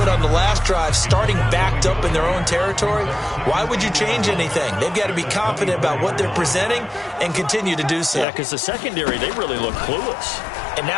it on the last drive, starting backed up in their own territory, why would you change anything? They've got to be confident about what they're presenting and continue to do so. Yeah, because the secondary, they really look clueless. And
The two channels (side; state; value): right; drops out; at 8.2 s